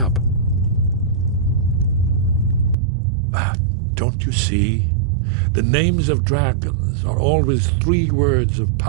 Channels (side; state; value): left; drops out; at 2.8 s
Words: Don't you see? The names of dragons are always 3 words of